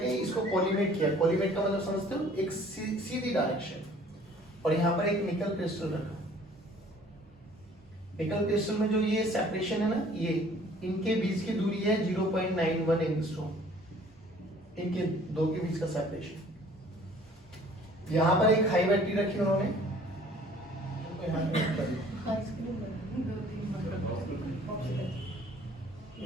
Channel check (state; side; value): normal; both; correlation 0.54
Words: इसको कोलिमेट किया। कोलिमेट का मतलब समझते हो, एक सीधी डायरेक्शन, और यहाँ पर एक निकल क्रिस्टल रखा। निकल क्रिस्टल में जो ये सेपरेशन है ना, ये इनके बीच की दूरी है 0.91 एंगस्ट्रॉम, इनके दो के बीच का सेपरेशन। यहाँ पर एक हाई बैटरी रखी उन्होंने,